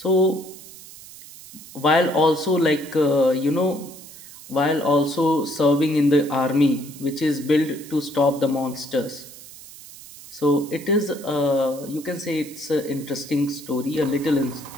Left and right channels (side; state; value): right; noise; hiss, 17 dB below the sound